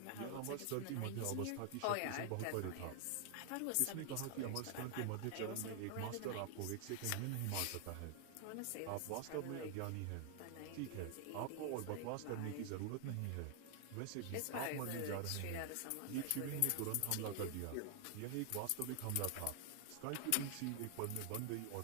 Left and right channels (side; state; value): both; different; correlation 0.00